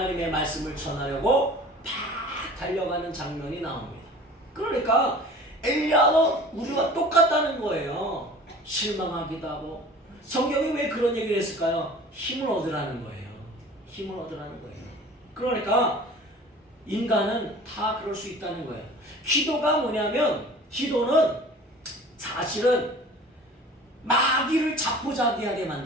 말씀을 전하려고 팍 달려가는 장면이 나옵니다. 그러니까 엘리야도 우리와 똑같다는 거예요. 실망하기도 하고. 성경이 왜 그런 얘기를 했을까요? 힘을 얻으라는 거예요. 힘을 얻으라는 거예요. 그러니까 인간은 다 그럴 수 있다는 거예요. 기도가 뭐냐면, 기도는 사실은 마귀를 자포자기하게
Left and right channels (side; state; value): both; normal; correlation 0.43